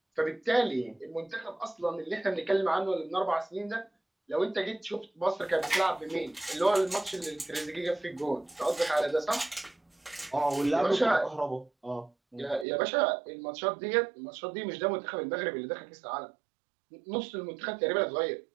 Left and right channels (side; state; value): left; drops out; at 12.7 s